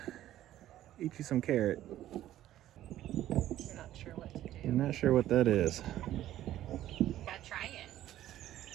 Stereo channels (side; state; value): left; quieter; 13.1 dB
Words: Eat you some carrot. We're not sure what to do. I'm not sure what that is. Gotta try it.